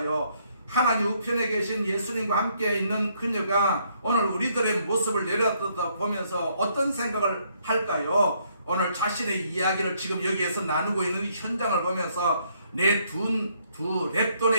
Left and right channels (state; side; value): inverted; both; correlation -0.69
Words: 하나님 우편에 계신 예수님과 함께 있는 그녀가 오늘 우리들의 모습을 내려다보면서 어떤 생각을 할까요? 오늘 자신의 이야기를 지금 여기에서 나누고 있는 현장을 보면서 내 두